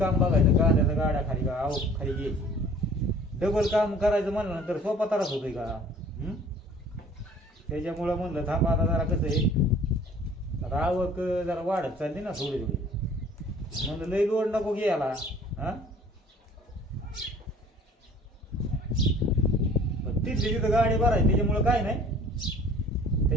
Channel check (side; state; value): both; normal; correlation 0.50